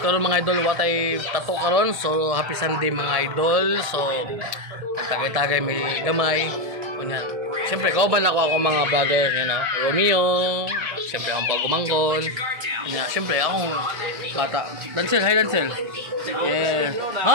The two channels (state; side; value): late; left; 1.8 ms